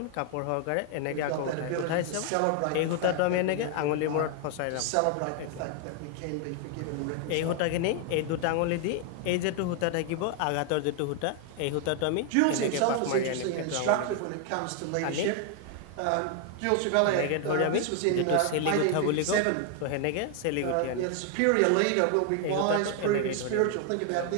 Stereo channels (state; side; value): different; both; correlation 0.00